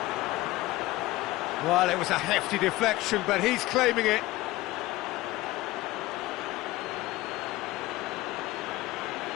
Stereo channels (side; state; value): right; quieter; 18.3 dB